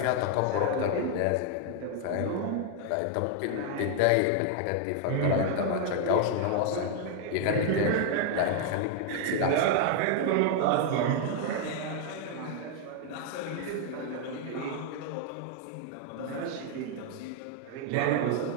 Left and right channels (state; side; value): different; both; correlation 0.00